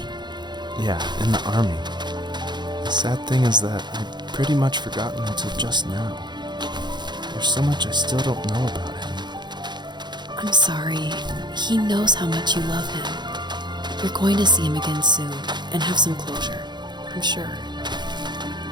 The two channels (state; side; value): late; left; 0.21 ms